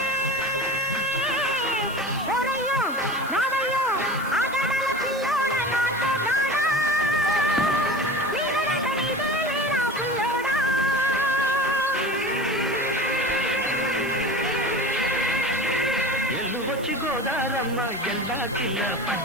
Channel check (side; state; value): right; noise; hiss, 19 dB below the sound